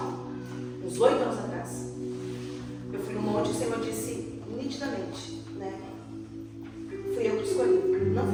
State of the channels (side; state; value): both; identical; correlation 1.00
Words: uns 8 anos atrás. Eu fui num monte e o Senhor disse nitidamente, né? Fui eu que te escolhi, não